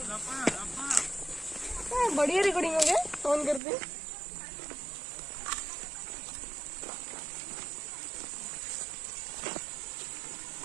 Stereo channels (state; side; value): drops out; left; at 3.6 s